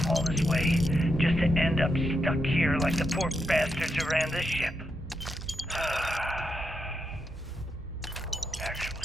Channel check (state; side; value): normal; both; correlation 0.83